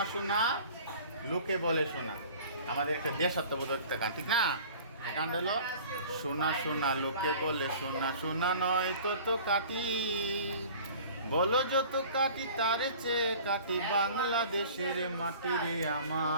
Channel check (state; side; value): inverted; both; correlation -0.45